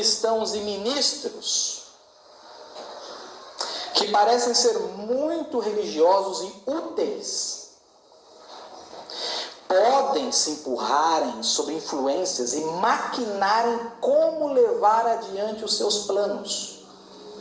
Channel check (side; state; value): both; identical; correlation 1.00